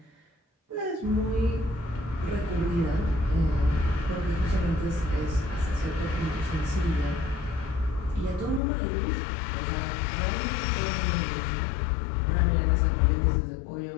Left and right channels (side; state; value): right; drops out; at 8.6 s